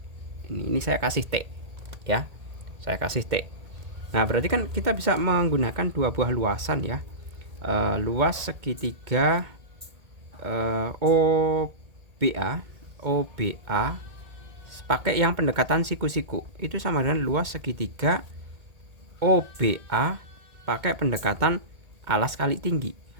Ini saya kasih T ya. Saya kasih T. Nah berarti kan kita bisa menggunakan dua buah luasan ya. Luas segitiga OBA pakai yang pendekatan siku-siku itu sama dengan luas segitiga OBA pakai pendekatan alas kali tinggi.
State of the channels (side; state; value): left; late; 1.8 ms